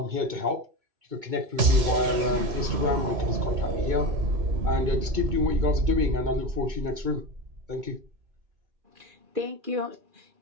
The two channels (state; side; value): late; left; 3.1 ms